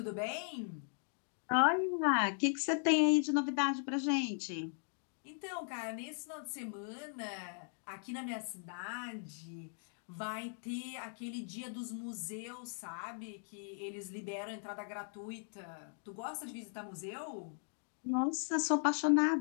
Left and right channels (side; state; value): right; silent; 52 dB below the other